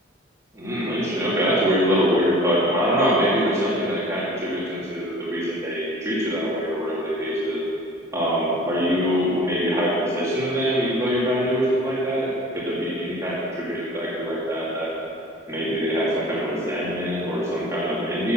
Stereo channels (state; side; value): normal; both; correlation 0.45